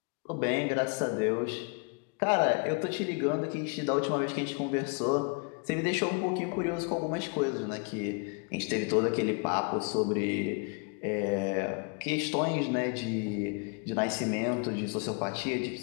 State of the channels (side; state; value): right; quieter; 35.9 dB